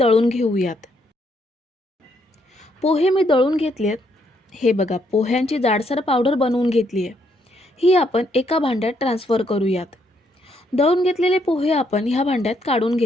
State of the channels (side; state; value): both; normal; correlation 0.73